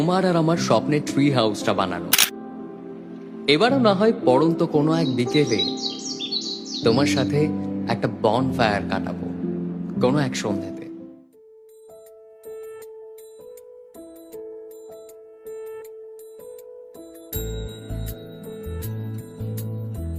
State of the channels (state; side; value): identical; both; correlation 1.00